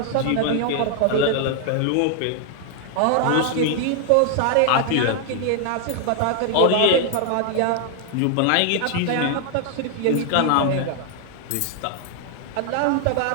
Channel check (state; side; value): different; both; correlation 0.00